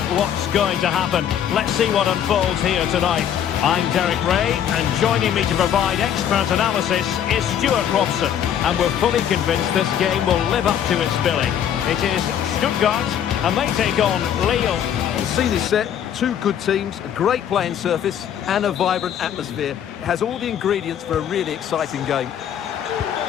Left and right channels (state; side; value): quieter; right; 9.5 dB